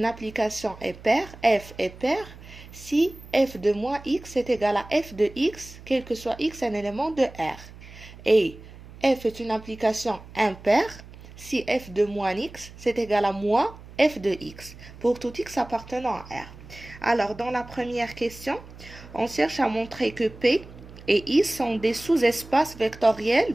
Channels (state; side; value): noise; right; hum, 18 dB below the sound